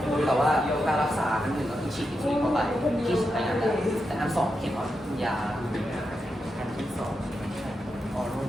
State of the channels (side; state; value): both; normal; correlation 0.86